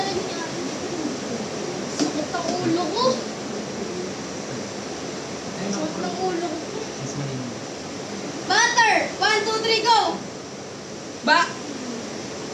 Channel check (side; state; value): both; identical; correlation 1.00